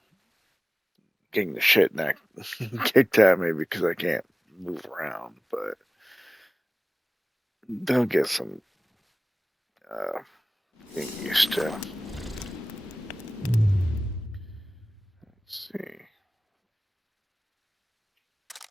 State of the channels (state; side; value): normal; both; correlation 0.98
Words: getting the shit kicked at me because I can't move around. But they'll get some getting used to. Let's see.